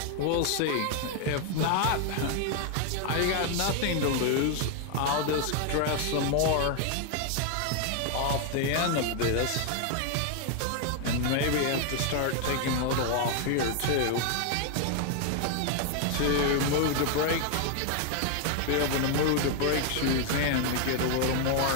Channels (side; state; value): both; different; correlation 0.00